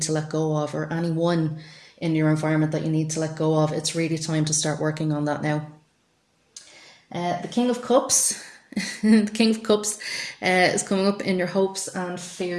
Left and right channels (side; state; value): both; identical; correlation 1.00